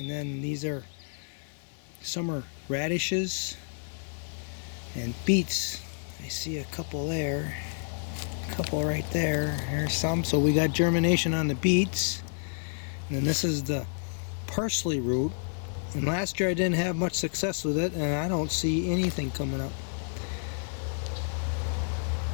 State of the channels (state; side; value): silent; right; digital silence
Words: then these are summer radishes and beets. I see a couple there, a couple right there. There's some, so we got germination on the beets. And then this is the parsley root. And last year I didn't have much success with it, and I don't see anything coming up.